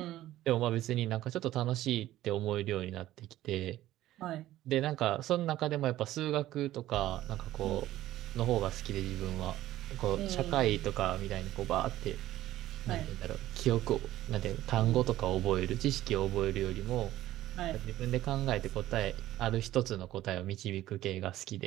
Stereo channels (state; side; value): quieter; left; 14.6 dB